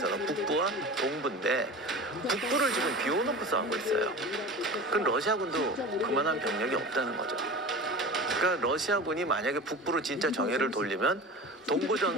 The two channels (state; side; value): normal; both; correlation 0.34